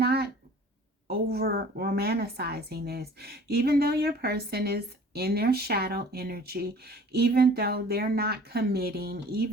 over romanticizing this. Even though your person is in their shadow energy, even though they're not committing,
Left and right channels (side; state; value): both; normal; correlation 0.48